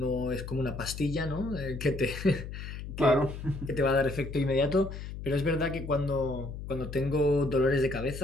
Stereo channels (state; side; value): noise; left; hum, 9 dB below the sound